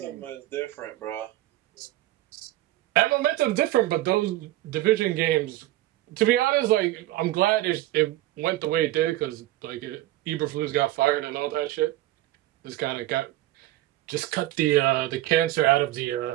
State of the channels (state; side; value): quieter; left; 15.8 dB